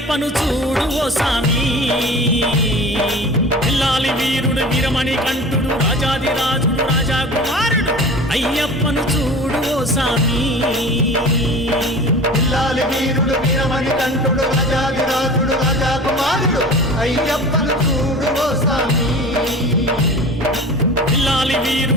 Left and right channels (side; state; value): both; normal; correlation 0.37